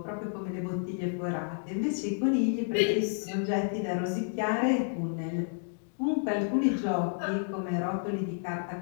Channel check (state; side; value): silent; right; digital silence